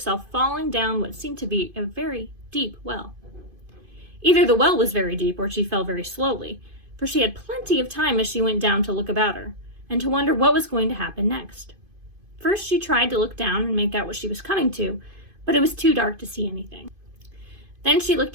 falling down what seemed to be a very deep well. Either the well was very deep or she fell very slowly, for she had plenty of time as she went down to look about her, and to wonder what was going to happen next. First she tried to look down and make out what she was coming to, but it was too dark to see anything. Then she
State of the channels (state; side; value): late; left; 2.5 ms